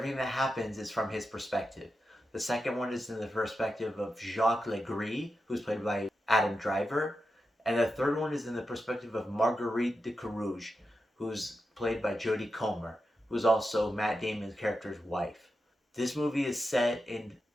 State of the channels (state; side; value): normal; both; correlation 0.89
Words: that happens is from his perspective. The second one is in the perspective of Jacques Gris, who's played by Adam Driver. And the third one is in the perspective of Marguerite de Carrouges, who's played by Jodie Comer, who's also Matt Damon's character's wife. This movie is set in